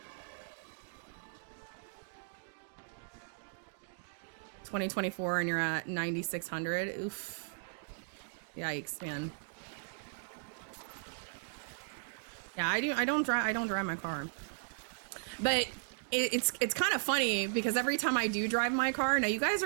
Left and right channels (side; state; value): left; silent; digital silence